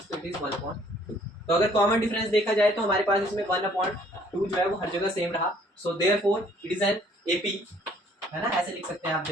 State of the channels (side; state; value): both; normal; correlation 0.60